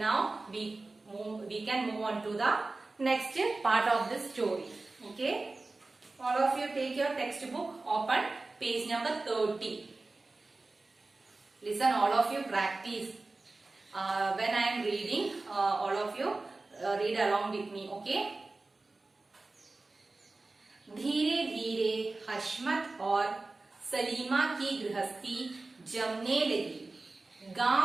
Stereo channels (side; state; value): left; quieter; 3.3 dB